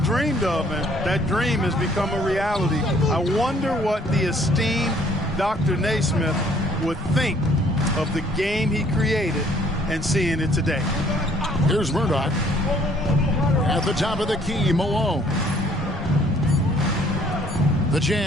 of, and that dream has become a reality. I wonder what the esteemed Dr. Naismith would think of the game he created and seeing it today. Here's Murdoch. At the top of the key, Malone. The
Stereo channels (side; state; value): both; normal; correlation 0.60